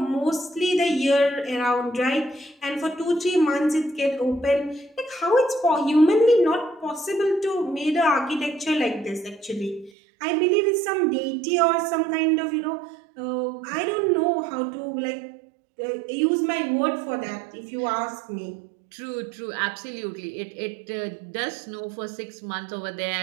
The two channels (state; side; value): drops out; left; at 9.9 s